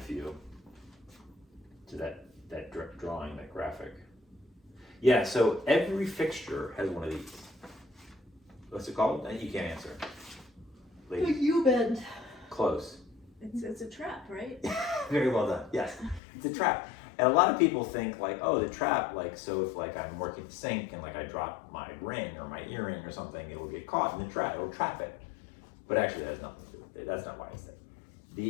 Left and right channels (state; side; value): drops out; right; at 16.2 s